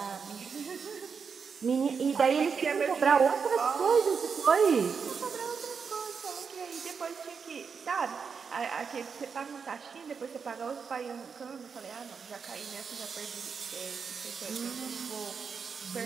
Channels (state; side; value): quieter; left; 5.9 dB